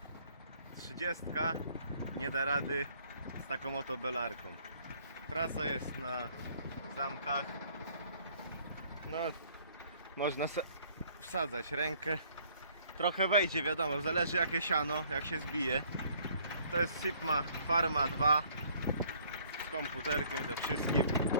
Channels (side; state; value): both; inverted; correlation -0.61